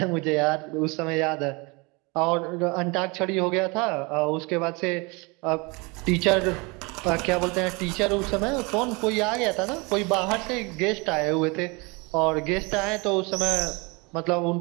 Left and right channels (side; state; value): left; quieter; 27.9 dB